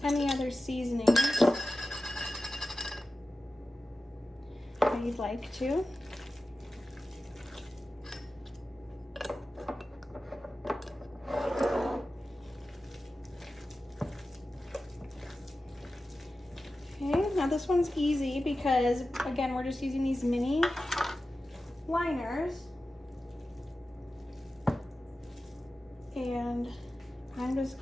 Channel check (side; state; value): both; normal; correlation 0.93